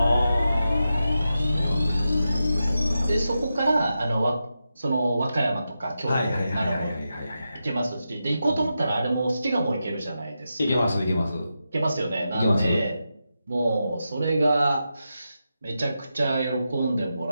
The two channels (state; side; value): inverted; both; correlation -0.89